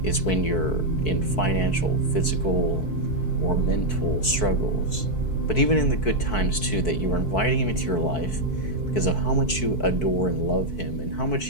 is when you're in financial, physical, or mental struggles. But even in the good times too, that you are inviting him into your life because of how much you adore and love him and how much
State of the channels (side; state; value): right; late; 4.6 ms